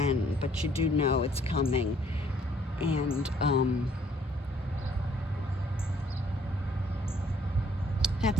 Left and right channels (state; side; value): normal; both; correlation 0.63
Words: but you do know it's coming. And